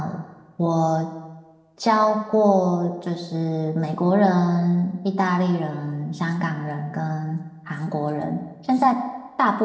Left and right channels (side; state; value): both; identical; correlation 1.00